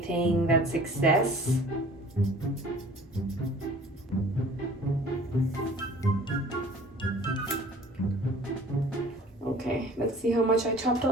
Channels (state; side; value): normal; both; correlation 0.48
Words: that's excess. Okay, let's see how much I chopped